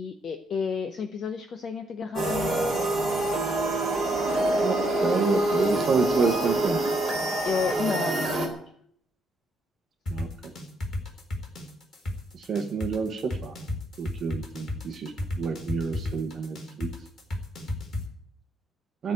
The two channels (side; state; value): both; normal; correlation 0.74